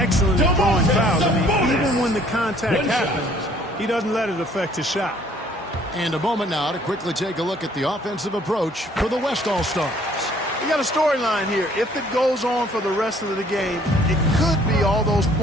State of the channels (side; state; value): both; normal; correlation 0.59